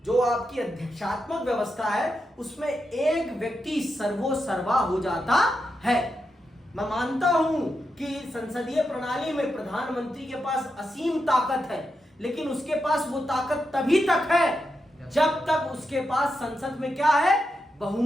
जो आपकी अध्यक्षात्मक व्यवस्था है उसमें एक व्यक्ति सर्वोसर्वा हो जाता है। मैं मानता हूं कि संसदीय प्रणाली में प्रधानमंत्री के पास असीम ताकत है, लेकिन उसके पास वो ताकत तभी तक है जब तक उसके पास संसद में क्या है,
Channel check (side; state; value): both; normal; correlation 0.86